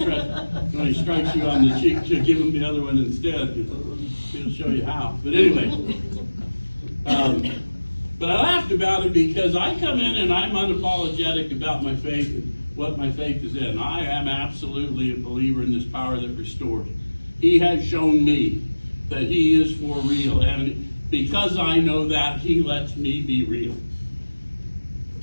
threat when he strikes you on the cheek, to give him the other one instead. He'll show you how. But anyway, but I laughed about it because I come in and I'm unapologetic about my faith and what my faith is in. I am absolutely a believer in this power that restores. He has shown me that He is for real, and because I know that, He lets me be real.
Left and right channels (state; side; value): inverted; both; correlation -1.00